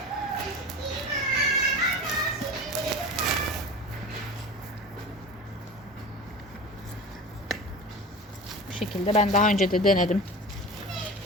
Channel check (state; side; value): normal; both; correlation 0.33